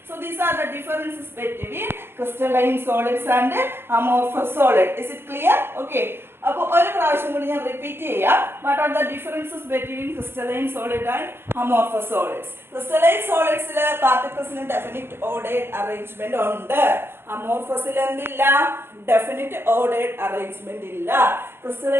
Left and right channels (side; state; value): left; late; 0.11 ms